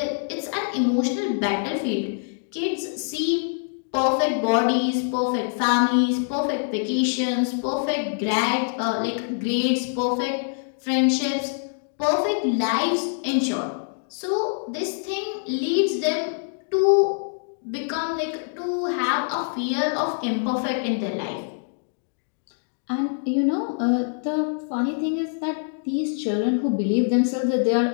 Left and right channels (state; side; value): silent; right; digital silence